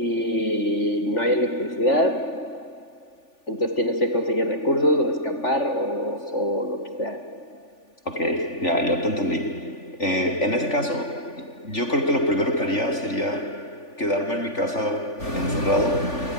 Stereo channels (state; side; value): late; right; 3.4 ms